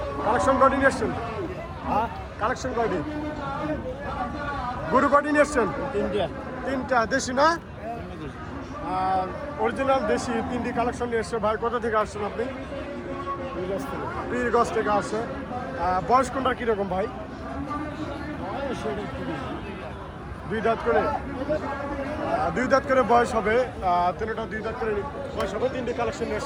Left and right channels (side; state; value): both; identical; correlation 1.00